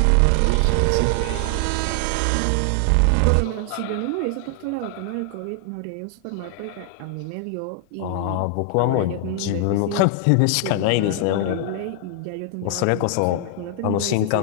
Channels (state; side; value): different; both; correlation 0.00